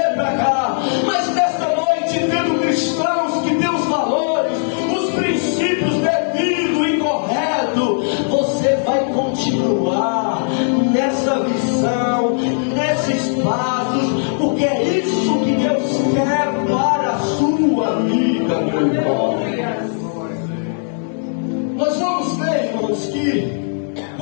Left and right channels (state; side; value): silent; right; 64 dB below the other